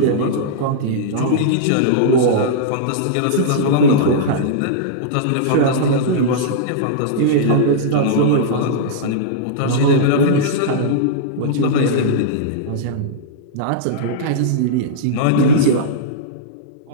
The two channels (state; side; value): different; both; correlation -0.03